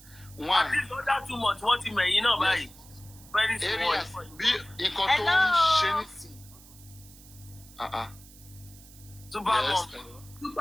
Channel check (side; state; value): right; noise; hiss, 21 dB below the sound